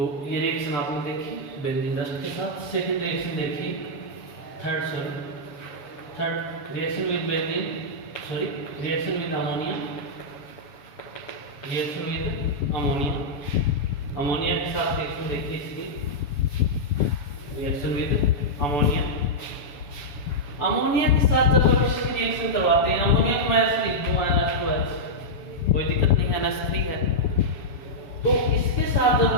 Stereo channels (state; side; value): late; right; 7.0 ms